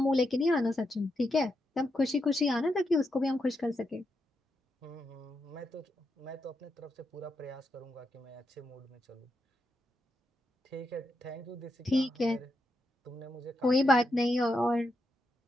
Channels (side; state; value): both; normal; correlation 0.84